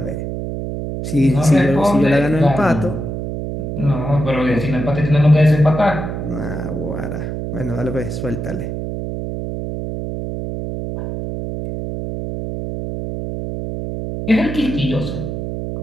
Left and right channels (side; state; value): right; noise; hum, 5 dB below the sound